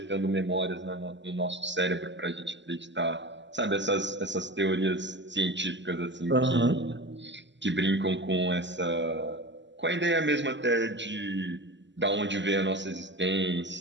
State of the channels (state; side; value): late; left; 0.53 ms